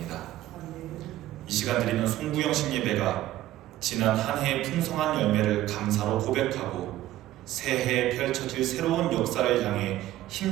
이 시간 드리는 송구영신 예배가 지난 한 해의 풍성한 열매를 감사로 고백하고 새해에 펼쳐질 새로운 역사를 향해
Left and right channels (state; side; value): quieter; left; 14.6 dB